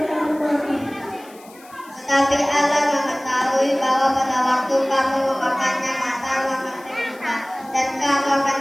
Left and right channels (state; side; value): noise; left; hiss, 24 dB below the sound